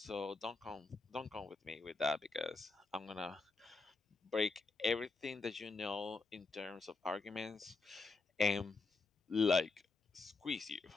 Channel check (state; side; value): quieter; right; 3.9 dB